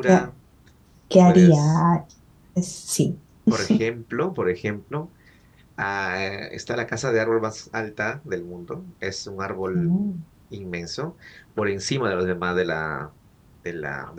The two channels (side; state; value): both; identical; correlation 1.00